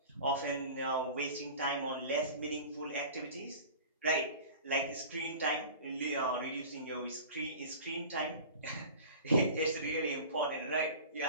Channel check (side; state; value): both; inverted; correlation -0.38